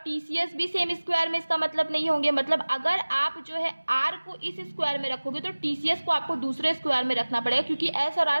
भी सेम स्क्वायर में, इसका मतलब नहीं होंगे। मतलब अगर आप जो है R को इस स्क्वायर में रखोगे तो TCS को आपको दूसरे स्क्वायर में रखना पड़ेगा, क्योंकि S और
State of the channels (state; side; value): inverted; both; correlation -1.00